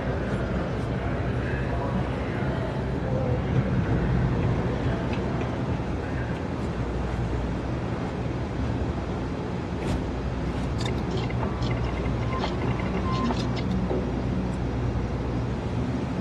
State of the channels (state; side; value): identical; both; correlation 1.00